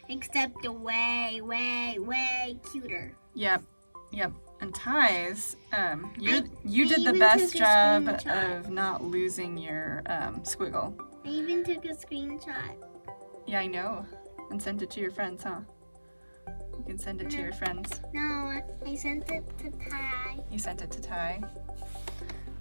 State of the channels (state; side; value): inverted; both; correlation -1.00